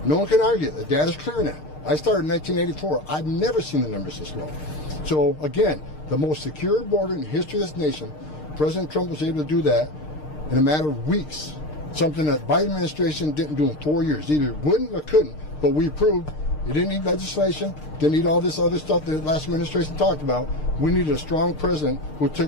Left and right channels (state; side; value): late; right; 6.6 ms